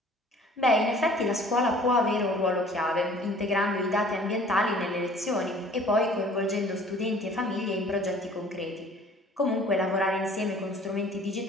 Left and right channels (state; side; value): normal; both; correlation 0.51